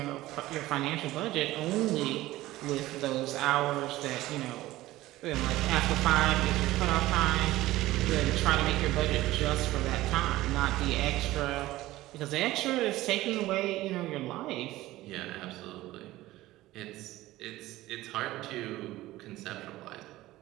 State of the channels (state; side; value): quieter; left; 16.8 dB